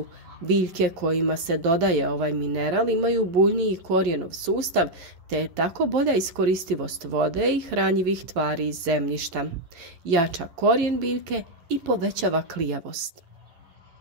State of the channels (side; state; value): left; late; 11 ms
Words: Biljke kojima se dodaje ovaj mineral imaju buljniji korijenov sustav, te je tako bolja iskoristivost vode i hranjivih tvari iz zemljišta. Jača korijen biljke i povećava klijavost.